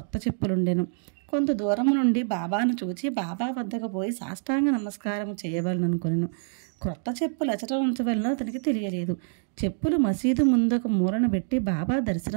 చెప్పులుండెను. కొంత దూరం నుండి బాబాను చూచి బాబా వద్దకు పోయి సాష్టాంగ నమస్కారం చేయవలననుకొనెను. క్రొత్త చెప్పులు అచట ఉంచవలన అతనికి తెలియలేదు. చెప్పులు మసీదు ముందుకు మూలన పెట్టి బాబా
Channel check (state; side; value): silent; left; digital silence